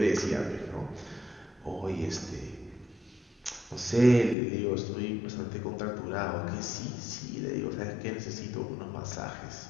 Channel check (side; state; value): right; drops out; at 4.4 s